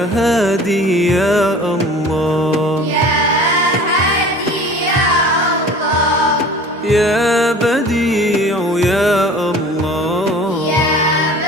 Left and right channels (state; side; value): normal; both; correlation 0.44